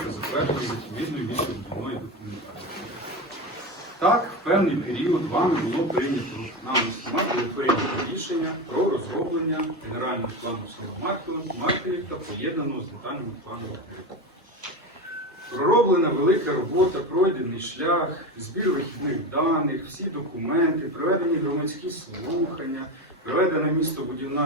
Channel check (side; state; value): both; normal; correlation 0.20